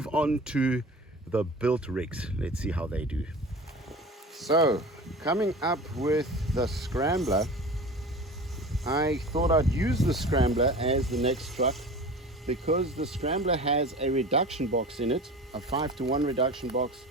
on to the built rigs. Let's see how they do. So coming up with the Scrambler, I thought I'd use the Scrambler as the next truck because the Scrambler has a reduction box in it, a 5-to-1 reduction box,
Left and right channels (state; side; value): normal; both; correlation 0.37